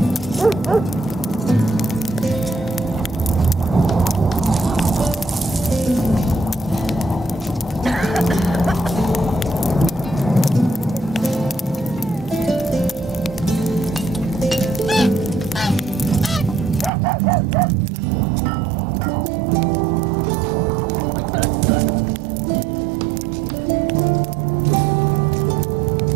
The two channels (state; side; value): drops out; left; at 16.9 s